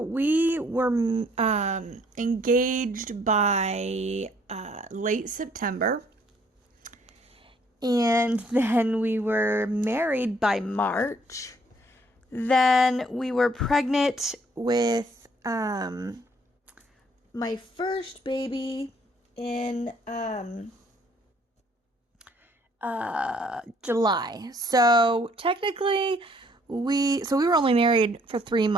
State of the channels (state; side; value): normal; both; correlation 0.63